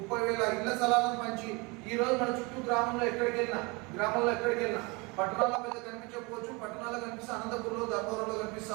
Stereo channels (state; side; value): quieter; left; 27.4 dB